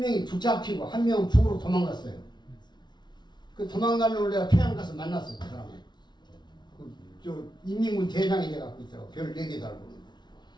붙잡히고 1명은 북으로 도망갔어요. 그 도망가는 걸 내가 평양 가서 만났어요. 그 사람을. 저 인민군 대장이 돼갖고 있더라고. 별 4개 달고.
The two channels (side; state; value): right; late; 0.21 ms